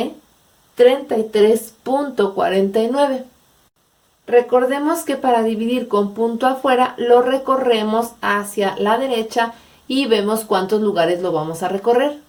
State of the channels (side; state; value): both; identical; correlation 1.00